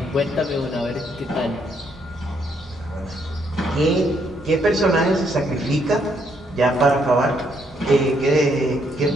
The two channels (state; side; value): normal; both; correlation 0.72